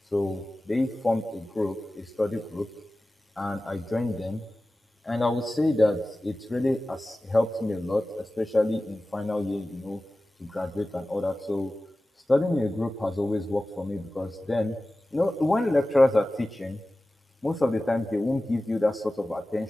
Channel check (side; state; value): both; normal; correlation 0.96